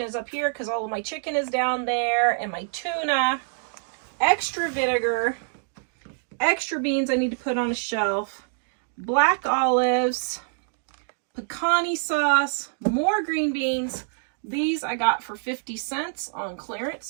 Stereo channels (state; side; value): silent; left; digital silence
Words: is up here because all of my chicken is down there, and my tuna, extra vinegar, extra beans I need to put on a shelf, black olives, pecani sauce, more green beans. These I got for 50 cents on clearance,